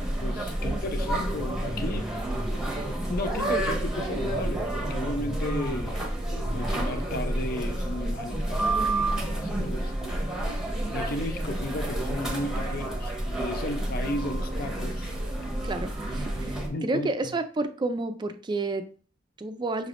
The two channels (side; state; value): both; normal; correlation 0.72